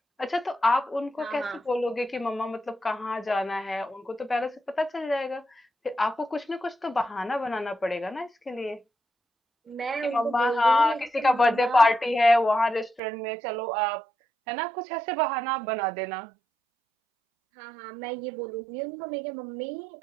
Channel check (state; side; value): drops out; left; at 13.0 s